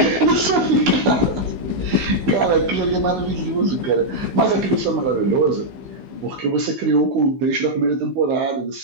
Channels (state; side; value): late; left; 15 ms